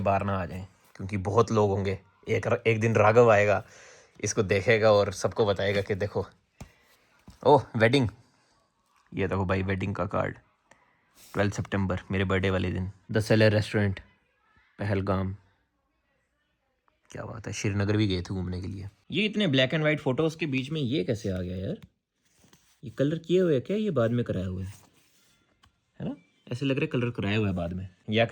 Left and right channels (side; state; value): both; identical; correlation 1.00